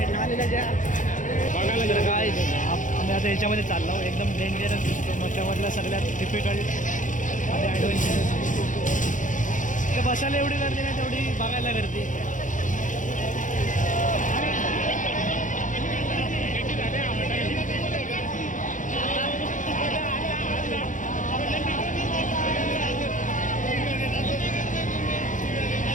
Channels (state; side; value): late; right; 0.37 ms